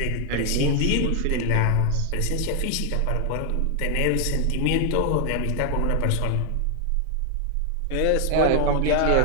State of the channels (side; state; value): both; different; correlation 0.00